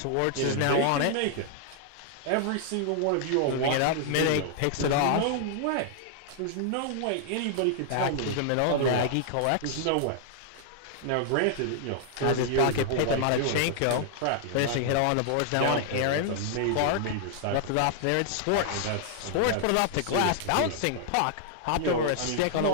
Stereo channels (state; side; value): different; both; correlation -0.01